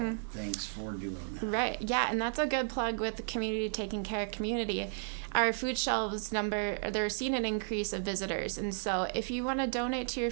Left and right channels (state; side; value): silent; left; digital silence